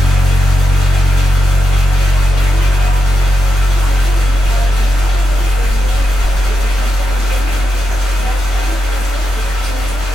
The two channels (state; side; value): normal; both; correlation 0.86